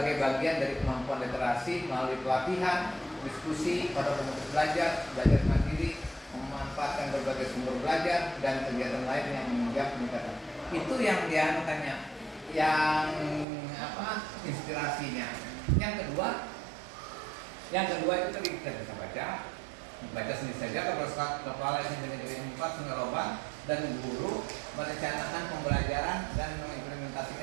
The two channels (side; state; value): left; drops out; at 13.5 s